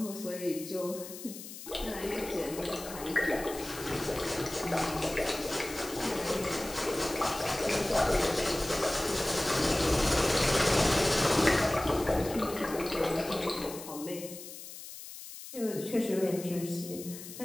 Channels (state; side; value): noise; left; hiss, 12 dB below the sound